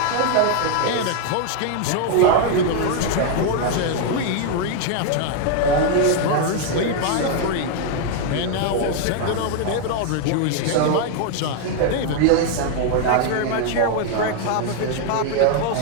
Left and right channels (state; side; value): different; both; correlation 0.00